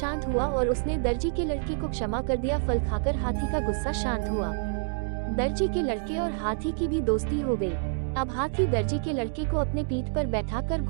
हुआ और उसने दर्जी के लड़के को क्षमा कर दिया। फल खाकर हाथी का गुस्सा शांत हुआ। दर्जी के लड़के और हाथी की भी दोस्ती हो गई। अब हाथी दर्जी के लड़के को अपने पीठ पर बैठाकर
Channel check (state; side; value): silent; left; digital silence